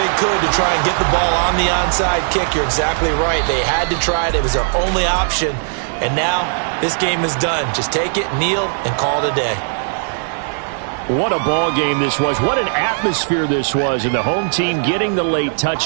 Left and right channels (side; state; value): left; silent; digital silence